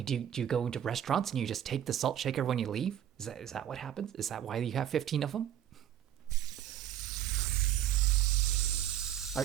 do you go into restaurants and you just take the salt shaker when you leave? Is that what happens? Is that why you have 15 of them?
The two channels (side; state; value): left; quieter; 10.8 dB